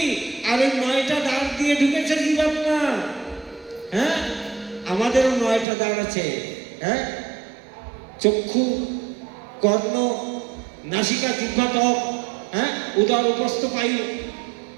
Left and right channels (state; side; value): drops out; left; at 5.7 s